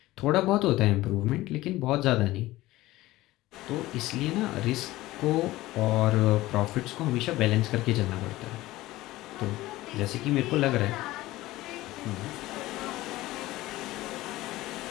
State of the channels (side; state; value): right; quieter; 17.5 dB